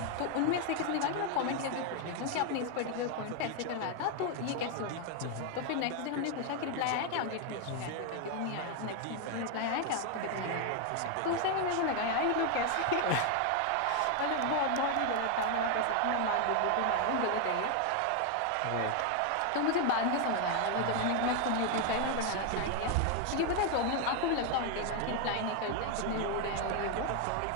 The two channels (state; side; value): different; both; correlation 0.01